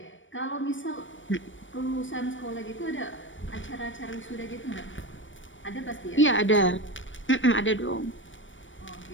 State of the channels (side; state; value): right; late; 0.56 ms